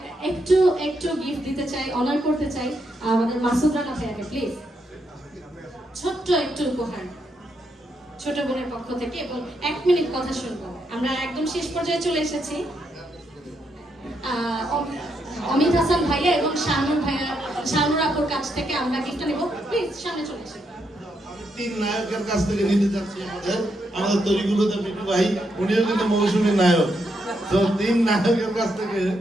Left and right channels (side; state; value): both; normal; correlation 0.80